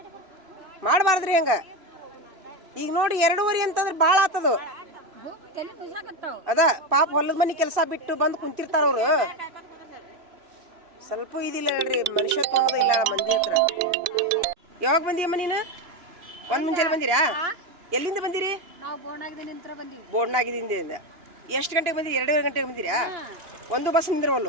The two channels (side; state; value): left; late; 2.5 ms